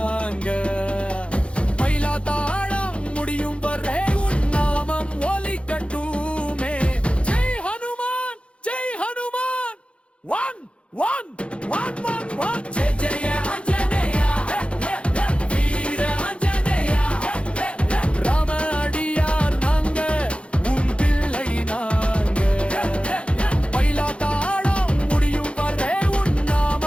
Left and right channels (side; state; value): right; late; 0.059 ms